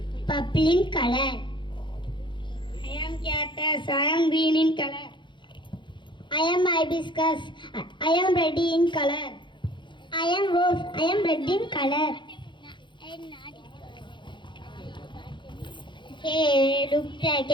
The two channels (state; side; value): late; right; 0.23 ms